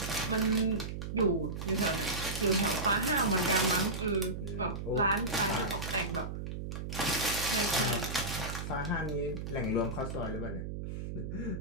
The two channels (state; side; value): noise; right; hum, 6 dB below the sound